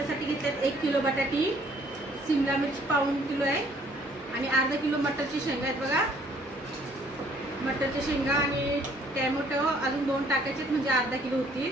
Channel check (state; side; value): normal; both; correlation 0.61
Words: घेतल्यात 1 किलो बटाटी, शिमला मिरची पाऊण किलो आहे आणि अर्धा किलो मटरची शेंगा आहेत बघा. मटरच्या शेंगा आणि टॅमॅटो अजून 2 टाकायचे म्हणजे अर्धा किलो होतील.